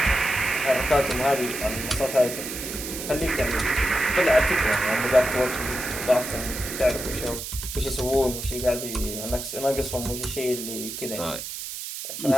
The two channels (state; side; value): noise; right; hiss, 7 dB below the sound